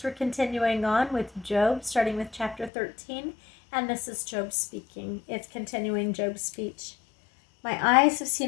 We're continuing on with Job, starting with chapter 13, and this is Job speaking. It's continuing Job's speech. My eyes have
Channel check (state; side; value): drops out; right; at 2.7 s